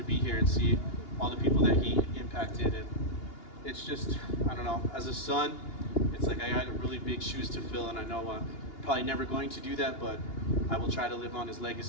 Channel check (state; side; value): late; right; 2.8 ms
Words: be here and see all the people that he impacted. And it's just, I don't know, as a son, it's like I got really big shoes to fill, and I know I'm probably never going to do that, but I will try to live on his